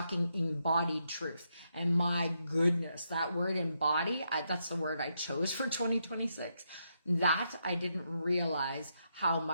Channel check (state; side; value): inverted; both; correlation -0.80